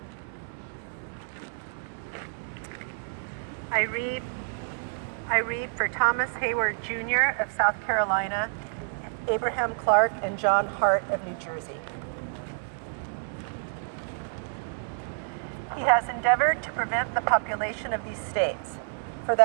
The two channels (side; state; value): left; silent; digital silence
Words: I read for Thomas Hayward Jr. of South Carolina, Abraham Clark, and John Hart of New Jersey. He has endeavored to prevent the population of these states, for